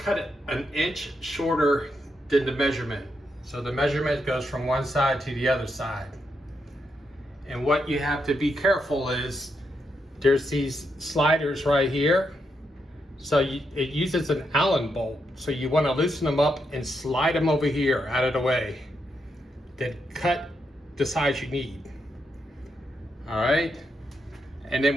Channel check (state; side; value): normal; both; correlation 0.82